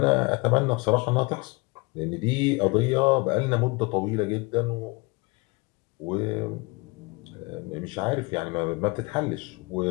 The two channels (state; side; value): quieter; right; 26.8 dB